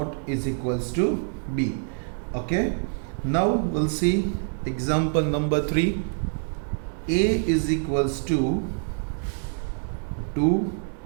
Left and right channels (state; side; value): silent; left; 61 dB below the other